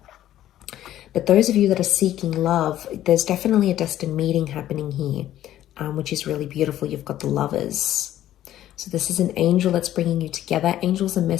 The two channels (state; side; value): quieter; right; 12.8 dB